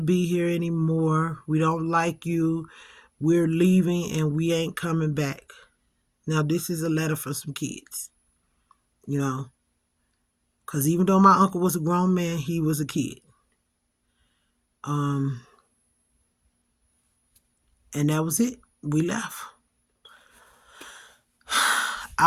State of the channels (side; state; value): both; identical; correlation 1.00